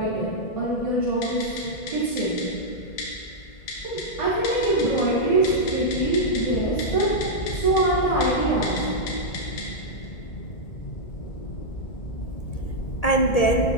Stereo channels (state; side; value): late; right; 1.8 ms